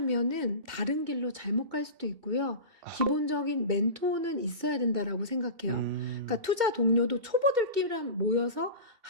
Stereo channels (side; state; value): left; late; 2.7 ms